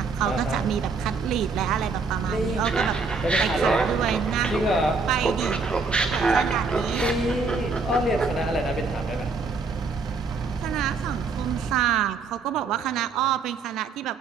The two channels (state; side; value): quieter; left; 4.4 dB